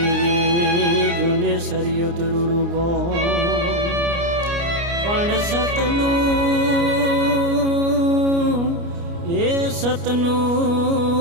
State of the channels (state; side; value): late; left; 29 ms